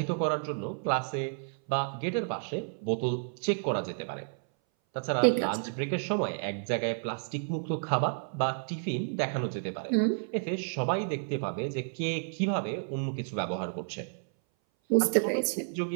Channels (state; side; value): silent; left; 57 dB below the other